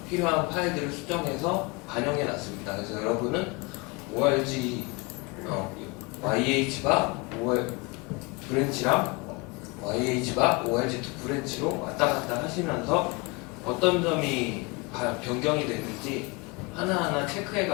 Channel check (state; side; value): quieter; right; 27.4 dB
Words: 필요한 파일들을 수정해서 반영해 놨습니다. 그래서 여러분은 ORG YH바 브랜치랑 YH바 ORG2 브랜치로 왔다 갔다 하시면서 어떤 점이 변경이 됐는지 하나하나 체크해